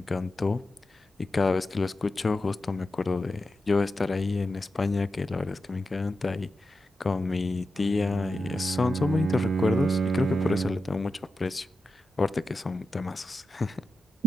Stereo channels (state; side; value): normal; both; correlation 0.90